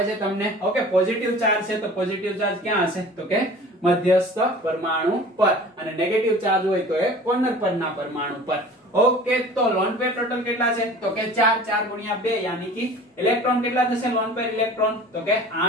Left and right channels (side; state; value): both; normal; correlation 0.43